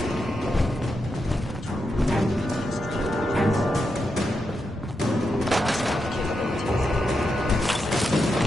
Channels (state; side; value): normal; both; correlation 0.85